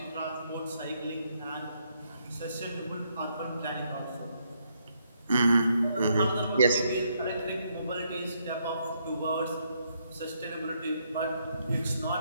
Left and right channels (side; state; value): both; inverted; correlation -0.74